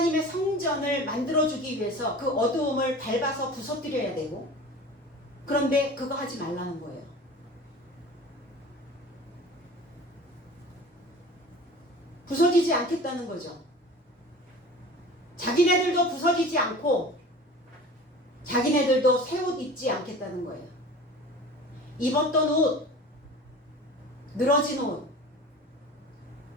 성전을 만들어주기 위해서 그 어두움을 밟아서 부서뜨려야 되고 그런데 그거 하지 말라는 거예요. 부서지지 않겠다는 거죠. 자기네들도 부서지지 않고 자기네들도 새 옷 입지 않겠다는 거예요. 입었던 옷, 늘어진 옷,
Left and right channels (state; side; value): normal; both; correlation 0.39